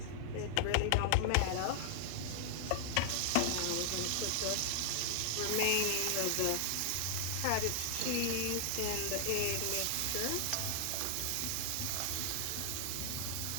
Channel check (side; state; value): both; different; correlation -0.01